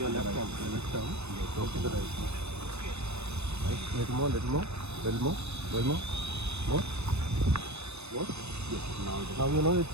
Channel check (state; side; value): late; left; 0.80 ms